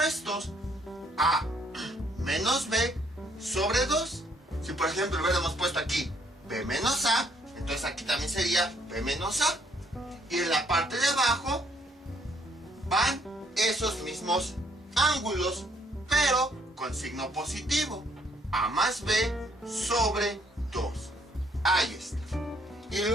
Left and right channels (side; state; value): both; normal; correlation 0.67